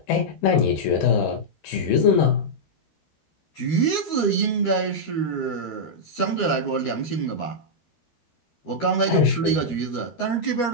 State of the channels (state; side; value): late; right; 13 ms